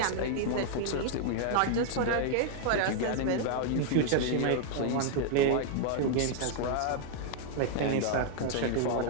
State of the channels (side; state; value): both; different; correlation -0.01